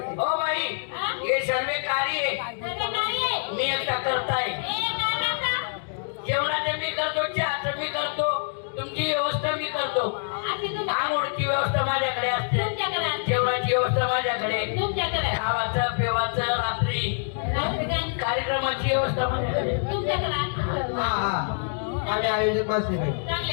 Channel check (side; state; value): right; silent; digital silence